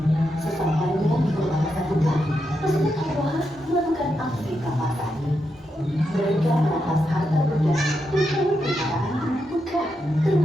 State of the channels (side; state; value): both; normal; correlation 0.84